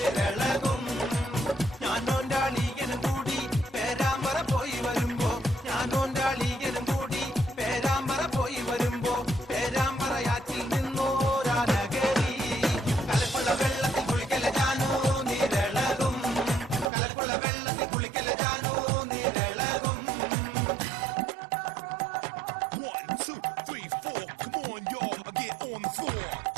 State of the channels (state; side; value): drops out; left; at 16.9 s